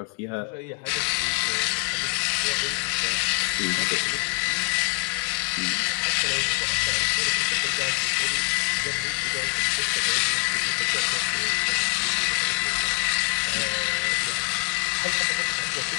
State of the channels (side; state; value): right; quieter; 32.9 dB